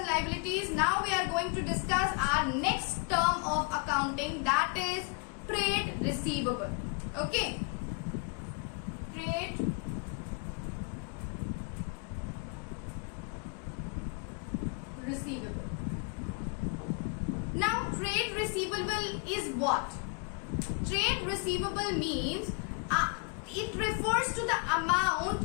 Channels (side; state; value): right; quieter; 32.7 dB